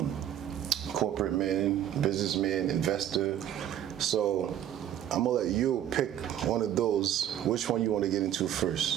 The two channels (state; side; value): quieter; left; 10.9 dB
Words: Corporate man, businessman, investor. So I'm gonna let you pick one of those. Which one you want to get into